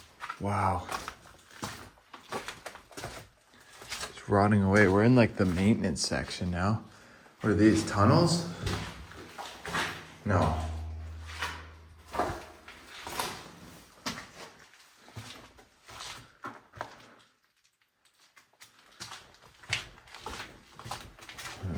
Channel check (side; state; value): both; identical; correlation 1.00